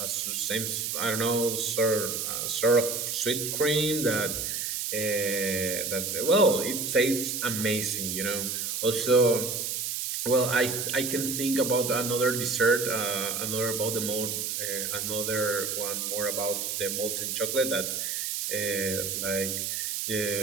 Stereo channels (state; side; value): noise; right; hiss, 2 dB below the sound